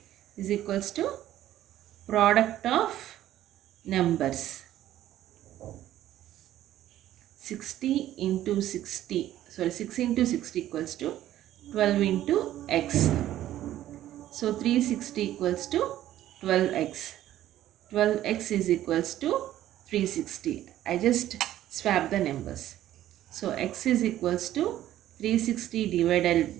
is equals to product of numbers. 60 into 60, sorry, 6 into 60 equals to 12 into x. So 360 equals to 12x. 12x is equals to 360. I just swap the numbers. So x is equals to 360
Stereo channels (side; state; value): left; quieter; 13.1 dB